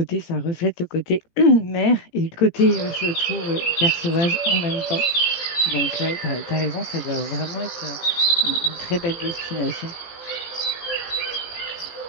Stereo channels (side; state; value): right; late; 18 ms